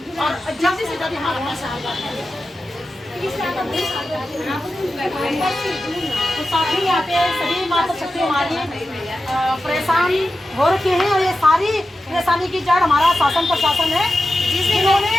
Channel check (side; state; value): both; normal; correlation 0.92